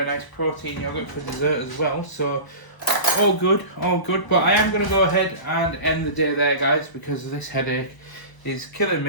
nice protein yogurt for dessert as well. So all good, all good. But I am going to go ahead and end the day there, guys, because this headache is killing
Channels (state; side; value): late; right; 1.0 ms